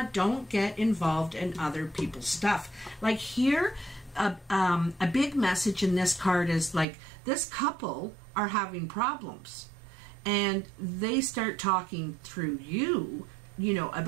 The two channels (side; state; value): left; drops out; at 6.9 s